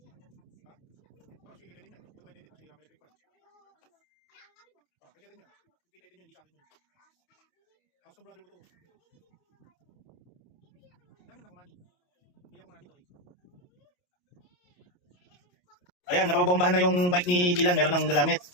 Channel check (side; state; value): right; late; 28 ms